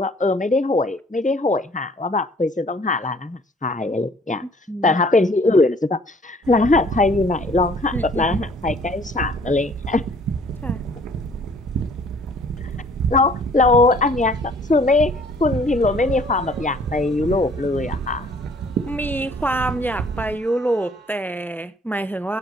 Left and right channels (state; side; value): normal; both; correlation 0.57